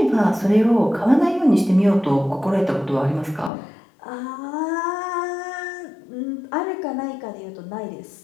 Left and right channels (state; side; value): drops out; right; at 3.5 s